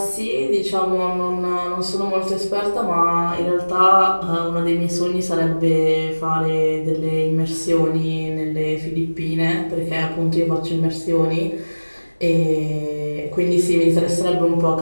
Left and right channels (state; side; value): inverted; both; correlation -1.00